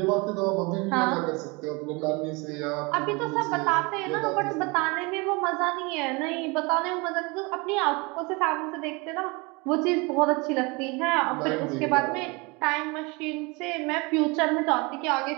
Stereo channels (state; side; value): quieter; left; 27.3 dB